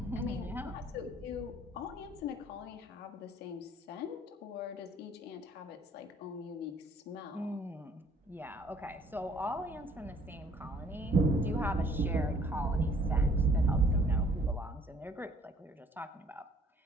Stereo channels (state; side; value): normal; both; correlation 0.59